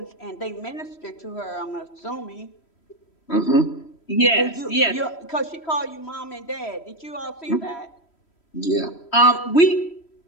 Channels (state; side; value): late; right; 3.1 ms